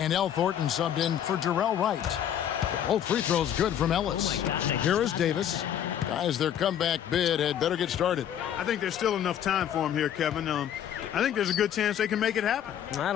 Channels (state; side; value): quieter; right; 9.9 dB